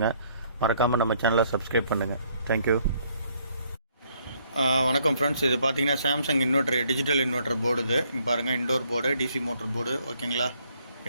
மறக்காமல் நம்ம சேனலை சப்ஸ்கிரைப் பண்ணுங்கள். தேங்க்யூ. வணக்கம் ஃப்ரெண்ட்ஸ், இது பார்த்தீங்கன்னா Samsung inverter, digital inverter board. இது இங்கே பாருங்கள், indoor board, DC motor board. ஓகேங்களா?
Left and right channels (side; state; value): both; inverted; correlation -0.67